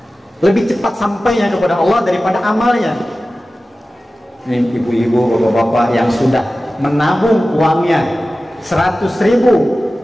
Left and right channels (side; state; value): both; normal; correlation 0.95